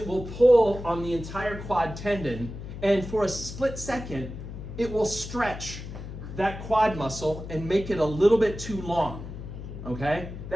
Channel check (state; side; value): noise; left; hum, 10 dB below the sound